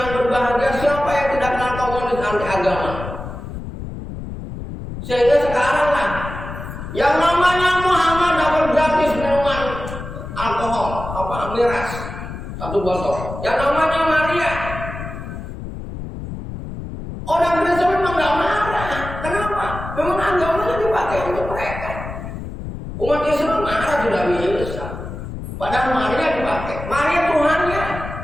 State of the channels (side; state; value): left; noise; rumble, 9 dB below the sound